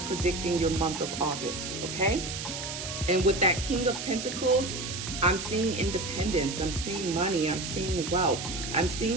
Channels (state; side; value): noise; right; hiss, 6 dB below the sound